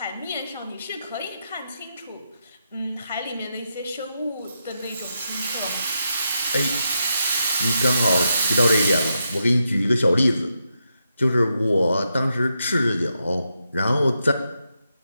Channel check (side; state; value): both; inverted; correlation -0.84